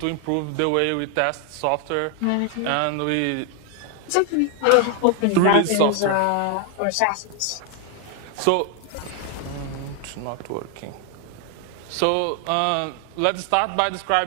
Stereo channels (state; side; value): different; both; correlation 0.00